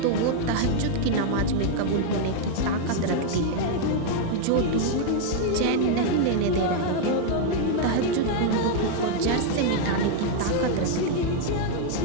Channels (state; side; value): different; both; correlation 0.00